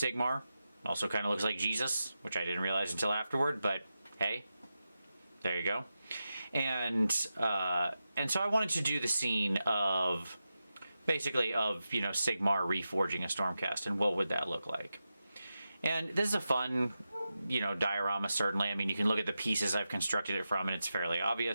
Also kind of looks like Jesus, which I didn't realize until afterward, but hey, there you go. And so I wanted to do the scene of, basically, Sigmar reforging a Stormcast, and what would that look like. And this is a fun, diorama, certainly. I mean, you can look at the pieces I've constructed it from, and it's fairly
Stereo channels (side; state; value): both; inverted; correlation -0.91